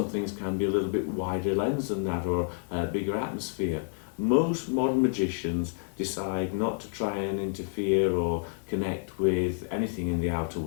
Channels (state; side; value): silent; right; 59 dB below the other